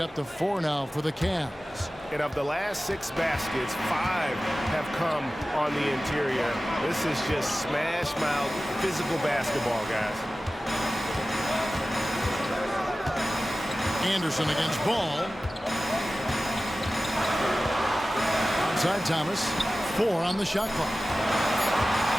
to 4 now for the Cavs. And of the last 6 baskets, 5 have come on the interior. This is just smash-mouth physical basketball, guys. Anderson against Ball. Outside Thomas. 4 on the shot clock.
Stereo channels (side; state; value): both; normal; correlation 0.96